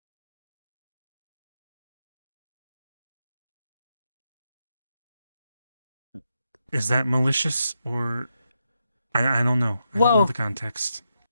Is that malicious or I don't know. I don't know Well, the context.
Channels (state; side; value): inverted; both; correlation -0.84